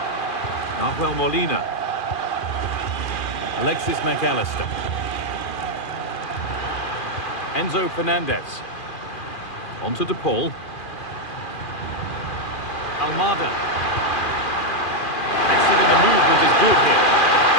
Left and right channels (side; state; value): right; late; 2.4 ms